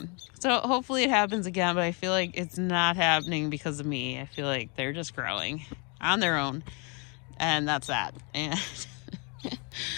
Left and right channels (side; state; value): right; quieter; 33.4 dB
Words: hopefully it happens again, but I feel like it's not happening because of me. I feel like they're just growing on their own, and that's that. And